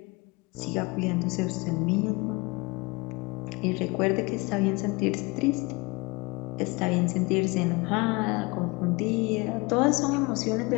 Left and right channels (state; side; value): quieter; right; 26.2 dB